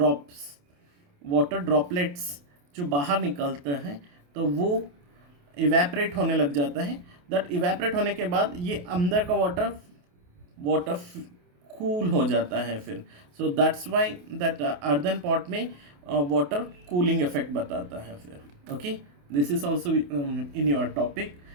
ड्रॉपलेट्स जो बाहर निकलते हैं, तो वो इवेपरेट होने लग जाता है। दैट इवेपरेट होने के बाद ये अंदर का वाटर कूल हो जाता है फिर। So that's why that earthen pot में वाटर कूलिंग इफेक्ट बताता है फिर। Okay, this is also in your topic.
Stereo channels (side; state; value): left; late; 28 ms